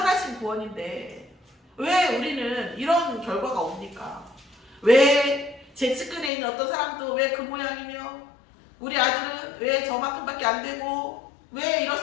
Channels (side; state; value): right; drops out; at 6.3 s